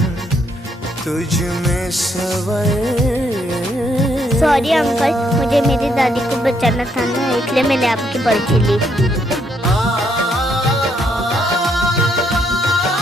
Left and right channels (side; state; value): both; normal; correlation 0.73